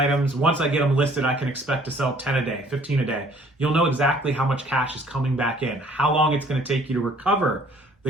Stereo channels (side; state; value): both; normal; correlation 0.57